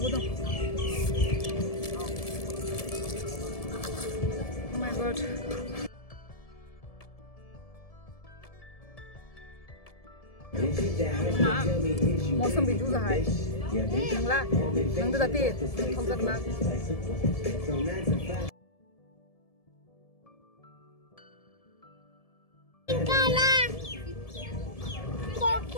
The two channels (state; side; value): late; right; 1.7 ms